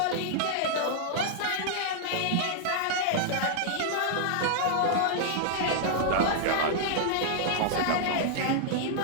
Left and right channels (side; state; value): both; different; correlation -0.01